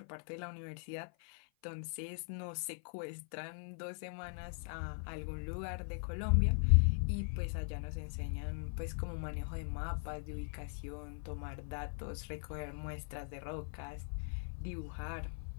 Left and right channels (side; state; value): right; silent; 51 dB below the other